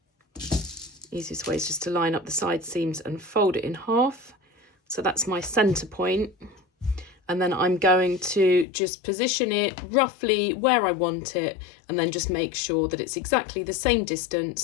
Easiest way is just to line up the side seams and fold it in half. So that's my centre point. And then I'm going to just position it roughly where I want it, and then just make sure that it's exactly the same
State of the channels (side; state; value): right; drops out; at 8.7 s